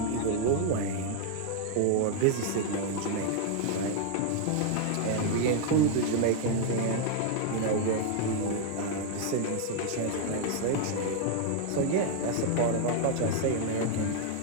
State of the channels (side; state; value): both; different; correlation 0.00